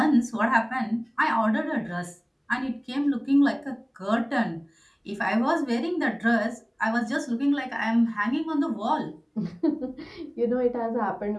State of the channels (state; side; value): identical; both; correlation 1.00